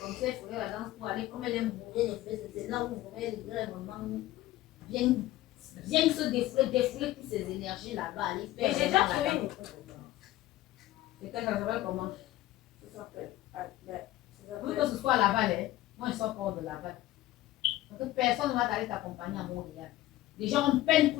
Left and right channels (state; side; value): quieter; right; 15.7 dB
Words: Comme ça, il faudrait la danse pour aller, comme elle aime bourrer les fleurs, c'est là où elle voudrait vraiment bien se défouler toutes ces énergies là-bas. Mais j'ai déjà trouvé une école. C'est qu'elle s'appelle comment? Ça s'appelle. Oui, que ce soit à Laval, hein. Moi, je sors pas de Laval. Parce que personne ne va t'aller t'accompagner à Montréal. Les gens ont peine